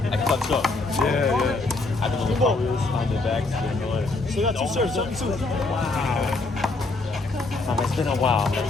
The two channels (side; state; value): right; quieter; 3.3 dB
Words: I clutch up. Yeah. I don't know the powers on the back. So you got 2 serves, 7-2. Wow. It's been a while.